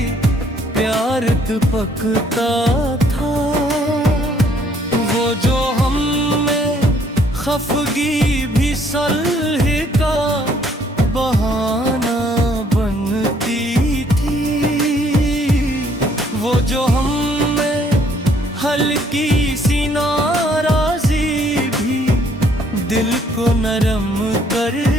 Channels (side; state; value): both; normal; correlation 0.64